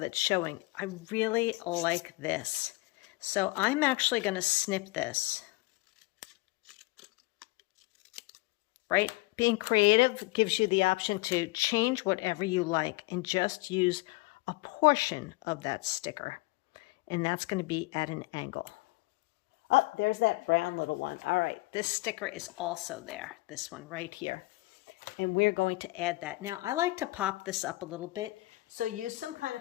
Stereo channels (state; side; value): quieter; right; 22.6 dB